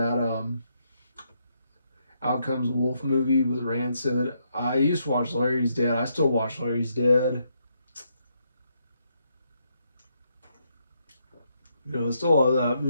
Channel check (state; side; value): inverted; both; correlation -0.77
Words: Outcomes Wolf movie with Rancid. I used to watch Larry's Dead. I still watch Larry's Dead. You know, I still love that